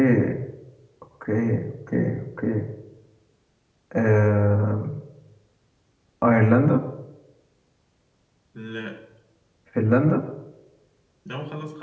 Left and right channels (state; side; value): identical; both; correlation 1.00